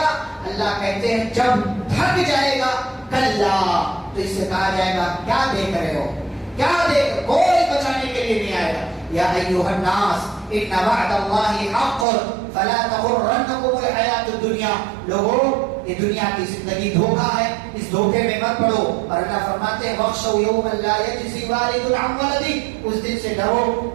اللہ کہتے ہیں جب تھک جائے گا کلا، تو اس سے کہا جائے گا کیا دیکھ رہے ہو، کیا دیکھ، کوئی بچانے کے لیے نہیں آئے گا۔ یا ایھا الناس ان وعد اللہ حق فلا تغرنکم الحیات الدنیا، لوگوں یہ دنیا کی زندگی دھوکا ہے، اس دھوکے میں مت پڑو۔ اور اللہ فرماتے ہیں وَاخْشَوْا يَوْمًا لَا يَجْزِي وَالِدٌ عَنْ وَلَدِهِ، اس دن سے ڈرو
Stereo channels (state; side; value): drops out; left; at 12.1 s